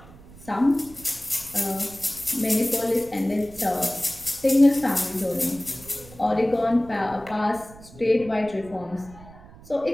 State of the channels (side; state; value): right; noise; rumble, 20 dB below the sound